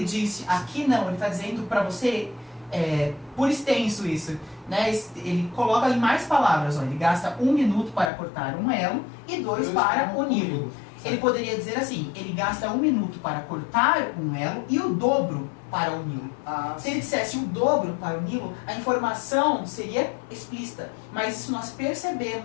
disse, aqui não, ele está dizendo para você, por extenso isso, né? Ele coloca em mais palavras, ó, ele gasta 1 minuto para cortar um elo e 2 para uni-lo. Ele poderia dizer assim, ele gasta 1 minuto para cortar um elo e o dobro para uni-lo. Se ele dissesse o dobro para uni-lo, a informação seria explícita, mas isso nós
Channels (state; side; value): drops out; right; at 8.1 s